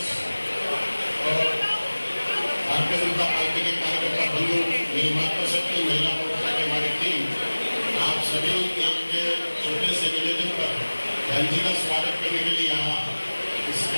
और भारतीय जनता पार्टी के कार्यकर्ता बंधु, मेरी मातृशक्ति महिला मोर्चा की हमारी टीम, आप सभी एक छोटे से निवेदन पर बहन जी का स्वागत करने के लिए यहाँ इस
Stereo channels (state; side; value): inverted; both; correlation -1.00